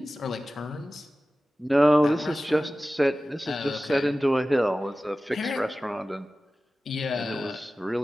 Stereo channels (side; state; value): both; normal; correlation 0.96